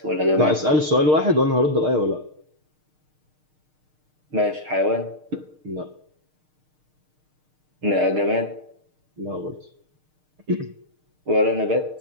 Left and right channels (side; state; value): left; late; 6.6 ms